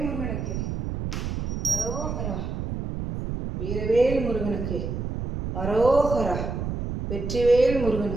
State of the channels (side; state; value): right; noise; rumble, 4 dB below the sound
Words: முருகனுக்கு அரோகரா. வீரவேல் முருகனுக்கு அரோகரா. வெற்றிவேல்